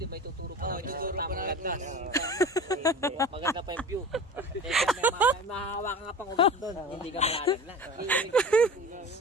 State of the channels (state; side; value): normal; both; correlation 0.35